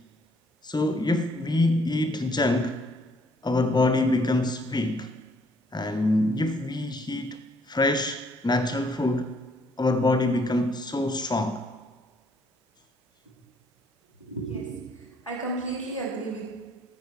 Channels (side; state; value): both; normal; correlation 0.66